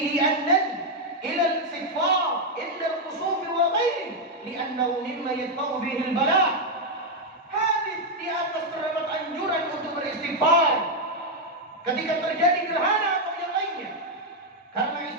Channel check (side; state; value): both; normal; correlation 0.01